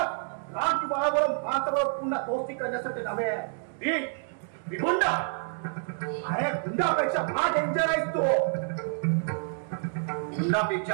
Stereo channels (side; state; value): left; silent; digital silence